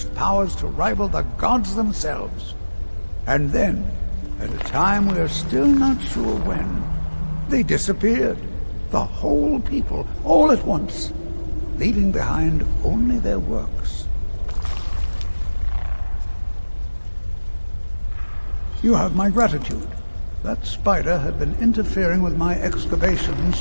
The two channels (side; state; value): both; inverted; correlation -1.00